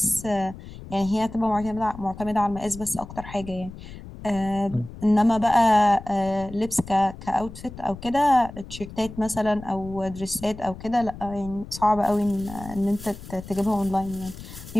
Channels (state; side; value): noise; left; rumble, 14 dB below the sound